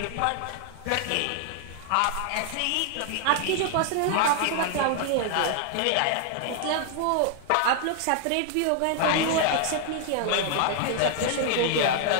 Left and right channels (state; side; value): different; both; correlation 0.00